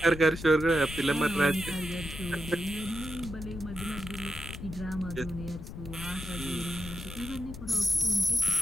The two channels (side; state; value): left; noise; rumble, 11 dB below the sound